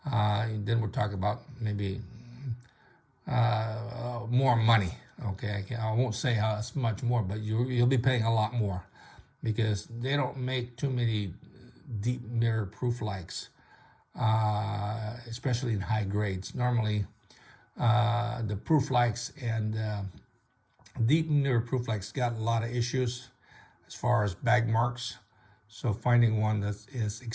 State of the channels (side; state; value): both; identical; correlation 1.00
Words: then we're talking about maybe more money. Okay, I won't say how much more, but you'll be paying a lot more because they don't make too many deep mirror proof likes, especially in high grades. Normally, the proof likes and deep mirror proof likes got a lot of issues as far as bag marks. So finding one that is